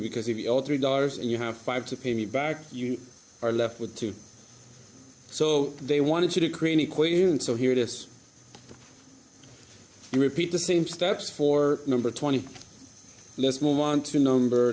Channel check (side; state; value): both; identical; correlation 1.00